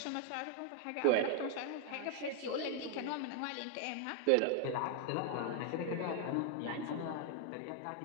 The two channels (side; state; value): both; different; correlation 0.00